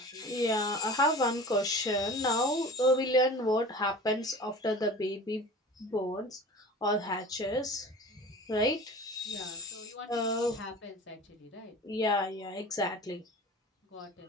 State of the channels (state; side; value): normal; both; correlation 0.38